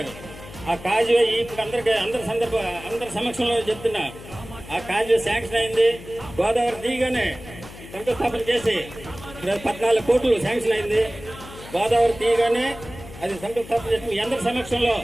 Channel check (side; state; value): left; noise; hum, 16 dB below the sound